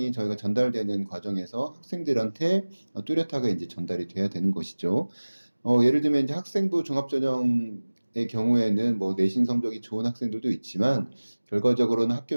저희가 전달되는 과정에서 학생들한테 뚜렷하게 이제 전달이 돼야 되는 것이죠. 예를 들면 이제 학생부 종합전형의 경우에는 뭐 내신 성적이 좋은 학생들도 있지만 결과적으로는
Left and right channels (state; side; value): inverted; both; correlation -1.00